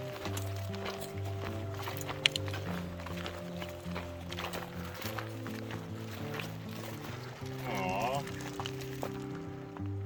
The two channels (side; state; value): both; identical; correlation 1.00